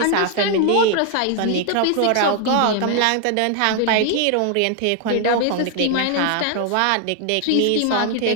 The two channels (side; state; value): both; different; correlation 0.00